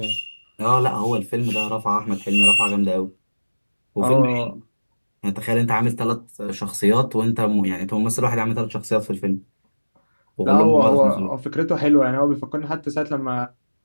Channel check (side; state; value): both; inverted; correlation -1.00